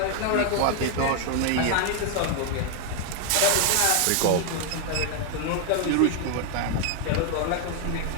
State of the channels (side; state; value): both; different; correlation 0.00